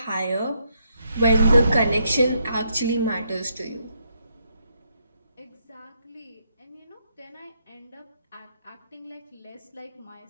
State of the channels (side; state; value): both; inverted; correlation -0.77